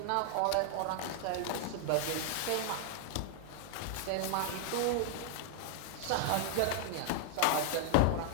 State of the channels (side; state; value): both; different; correlation -0.01